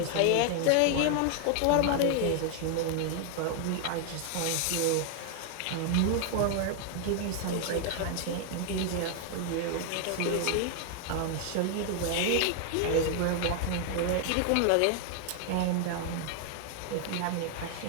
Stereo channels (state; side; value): different; both; correlation 0.00